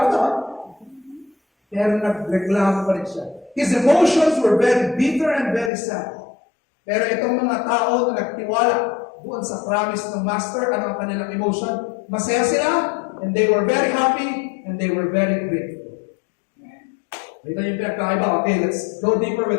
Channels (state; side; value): drops out; right; at 5.7 s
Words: pero nagreklamo pa rin siya. His emotions were very bitter and very sad. Pero itong mga tao na nagtiwala doon sa promise ng master, ano ang kanilang emotion? Masaya sila, and they were very happy, and they were very grateful. Ito yung pinagkaiba. Okay, let's go deeper